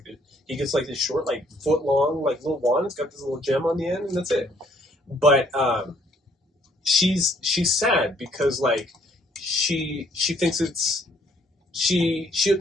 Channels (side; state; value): both; normal; correlation 0.64